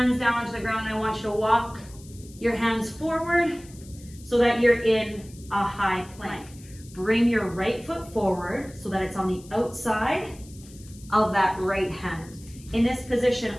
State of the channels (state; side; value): noise; left; hiss, 22 dB below the sound